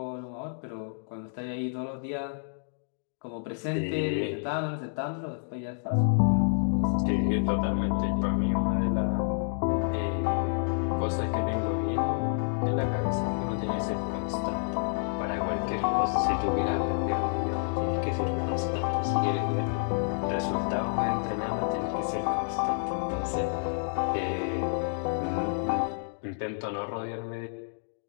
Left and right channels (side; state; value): right; silent; digital silence